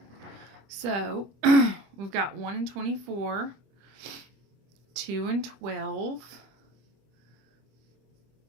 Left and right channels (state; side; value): late; left; 25 ms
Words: So we've got 1 and 24, 2 and 12,